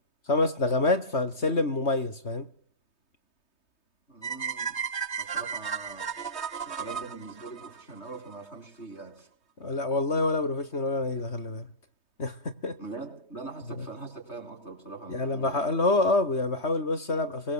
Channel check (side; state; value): right; late; 3.2 ms